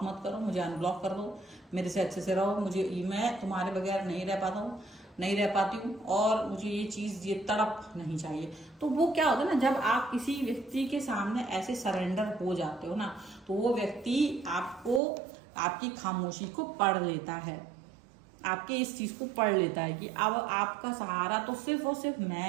मत करो, मुझे अनब्लॉक कर दो, मेरे से अच्छे से रहो, मुझे, मैं तुम्हारे बगैर नहीं रह पाता हूँ, नहीं रह पाती हूँ, और मुझे ये चीज, ये तड़प नहीं चाहिए। तो वो क्या होता है ना, जब आप किसी व्यक्ति के सामने ऐसे सरेंडर हो जाते हो ना, तो वो व्यक्ति आपको, आपकी खामोशी को पढ़ लेता है, आपके इस चीज को पढ़ लेता है कि अब आपका सहारा तो सिर्फ और सिर्फ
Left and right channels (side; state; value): left; drops out; at 15.0 s